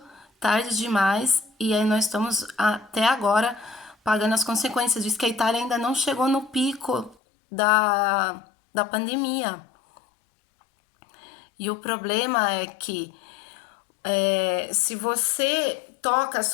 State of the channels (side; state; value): right; drops out; at 7.2 s